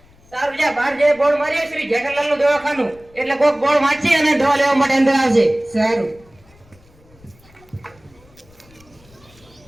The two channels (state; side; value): noise; left; rumble, 28 dB below the sound